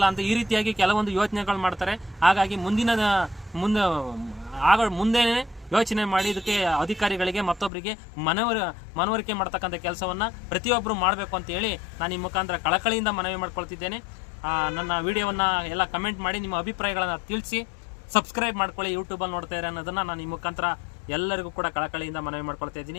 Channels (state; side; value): drops out; right; at 7.7 s